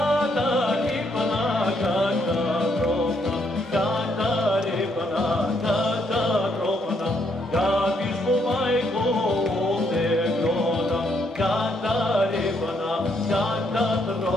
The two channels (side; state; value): both; normal; correlation 0.73